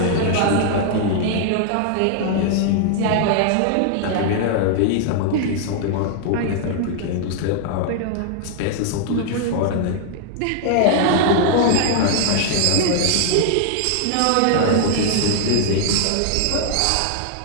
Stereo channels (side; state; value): both; different; correlation 0.00